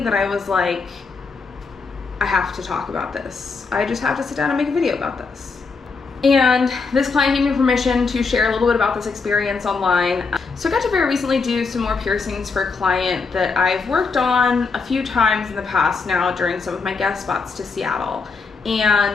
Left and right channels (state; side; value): quieter; right; 4.6 dB